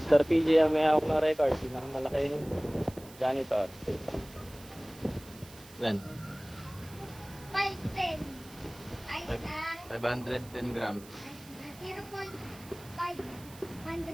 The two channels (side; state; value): right; noise; hiss, 20 dB below the sound